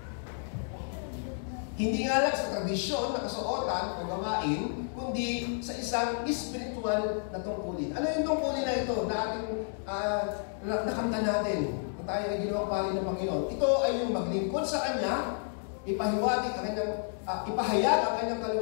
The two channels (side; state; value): right; silent; digital silence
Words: Hindi nga lang sa tradisyon na kasuotan o gawain, kundi sa isang spiritual na tungkulin. Ano yung tungkulin na ito na ating nakanta natin kung tayo ay ginawang pari ng Panginoon? Ito ay yung maglingkod sa Kanya, ipahayag ang kanyang